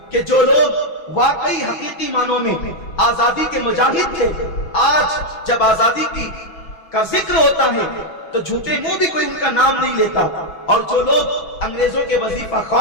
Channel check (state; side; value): late; right; 6.1 ms